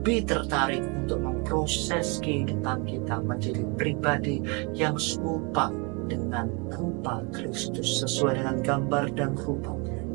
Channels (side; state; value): left; quieter; 31.0 dB